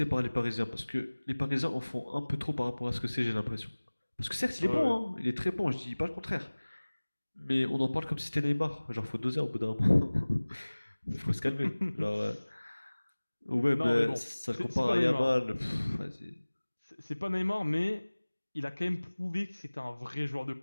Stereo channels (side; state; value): both; inverted; correlation -1.00